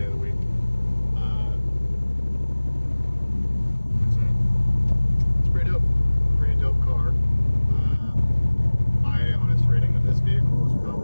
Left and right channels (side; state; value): both; inverted; correlation -1.00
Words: of the week. It's pretty dope. Pretty dope car. My honest rating of this vehicle is